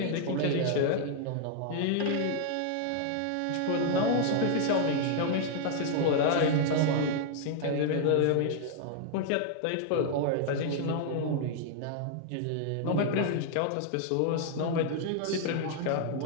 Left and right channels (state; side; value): different; both; correlation 0.00